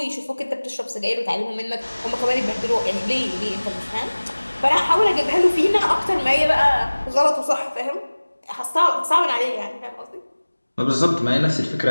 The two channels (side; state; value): both; inverted; correlation -1.00